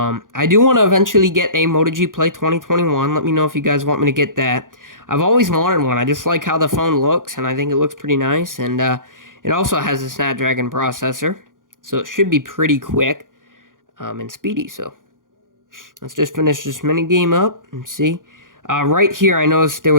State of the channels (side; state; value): left; late; 0.89 ms